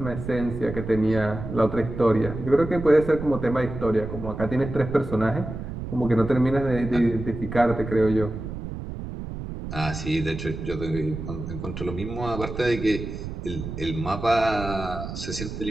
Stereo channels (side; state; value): right; noise; rumble, 8 dB below the sound